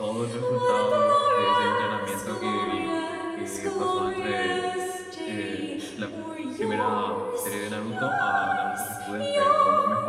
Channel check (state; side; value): identical; both; correlation 1.00